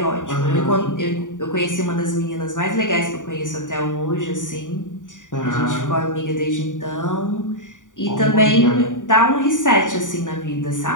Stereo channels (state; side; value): late; right; 0.87 ms